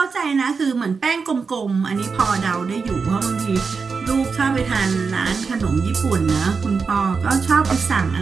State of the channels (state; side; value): quieter; left; 5.1 dB